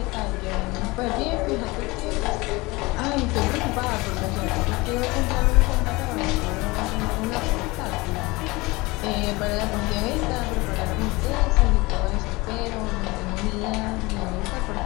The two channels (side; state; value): right; quieter; 23.0 dB